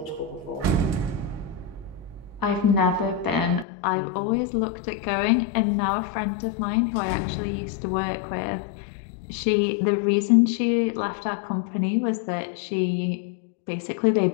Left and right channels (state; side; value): drops out; right; at 3.7 s